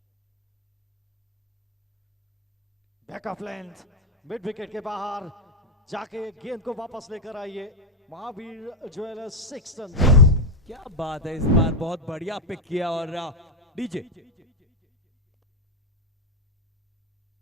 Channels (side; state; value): both; normal; correlation 0.05